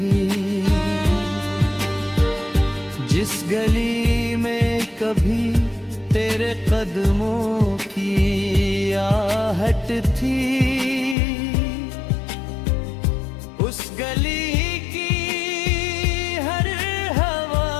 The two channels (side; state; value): right; drops out; at 11.2 s